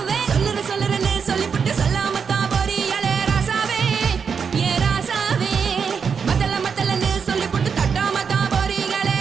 சொல்லுறேன்னு சொல்லிவிட்டு சொல்லாம தான் போறியாளே ராசாவே. ஏ ராசாவே மத்தலன்னு சொல்லிவிட்டு தட்டாம தான் போறீங்களே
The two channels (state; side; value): quieter; left; 6.2 dB